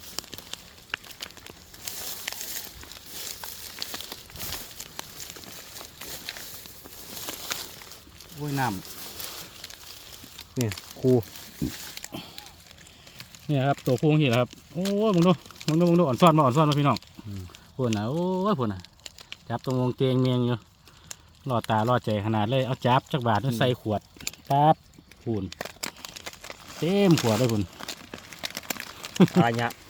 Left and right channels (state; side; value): identical; both; correlation 1.00